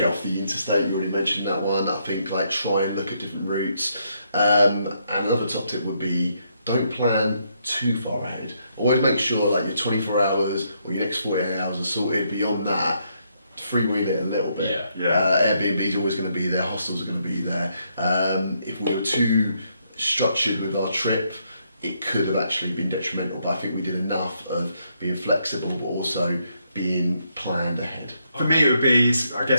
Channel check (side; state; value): both; inverted; correlation -0.75